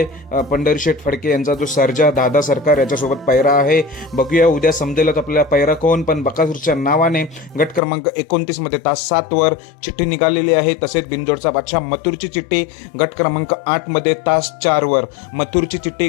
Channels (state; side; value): drops out; right; at 7.8 s